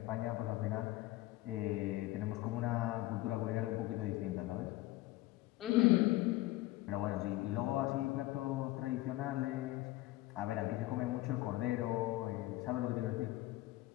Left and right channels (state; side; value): quieter; right; 17.6 dB